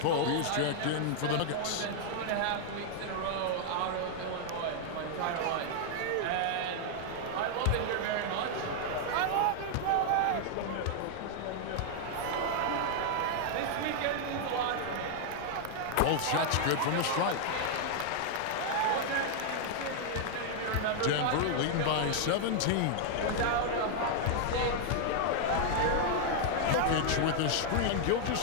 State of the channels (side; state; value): both; different; correlation 0.00